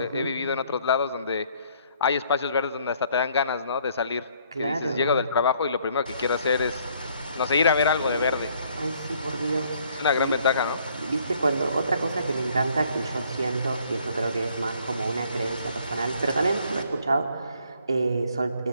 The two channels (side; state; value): both; inverted; correlation -0.64